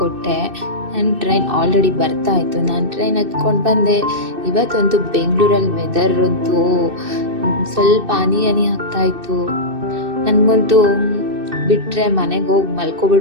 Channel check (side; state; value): left; late; 2.6 ms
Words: ನನ್ನ ಟ್ರೈನ್ ಆಲ್ರೆಡಿ ಬರ್ತಾ ಇತ್ತು. ನಾನು ಟ್ರೈನ್ ಹತ್ಕೊಂಡು ಬಂದೆ. ಇವತ್ತಂತೂ ಬೆಂಗಳೂರಲ್ಲಿ ವೆದರ್ ಅಂತೂ ಸ್ವಲ್ಪ ಹನಿ ಆಗ್ತಾ ಇತ್ತು. ನನಗಂತೂ ಬಿಟ್ಟರೆ ಮನೆಗೆ ಹೋಗಿ